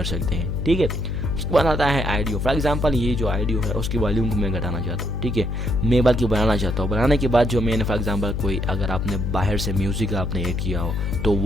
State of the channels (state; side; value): noise; left; hum, 1 dB below the sound